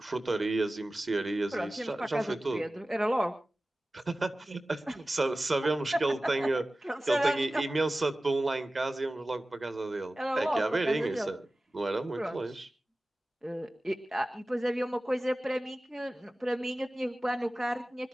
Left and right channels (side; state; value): both; normal; correlation 0.96